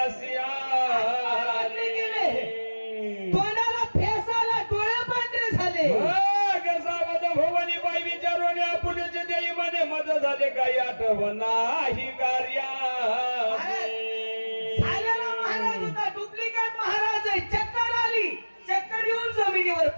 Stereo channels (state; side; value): inverted; both; correlation -1.00